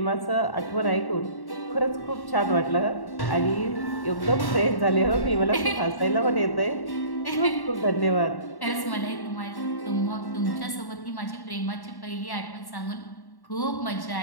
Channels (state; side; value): late; right; 1.1 ms